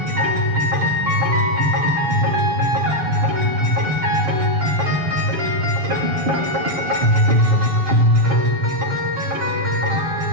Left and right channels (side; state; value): left; late; 7.4 ms